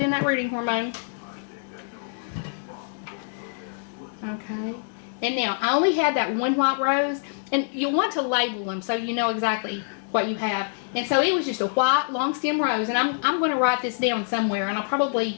that rooting hormone. Okay. And now, I only had that one white rose. And you'll want to label them so you know exactly what you have. And so it was just a white long stem rose. And I'm going to write this down somewhere. And I'll probably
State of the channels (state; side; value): silent; right; digital silence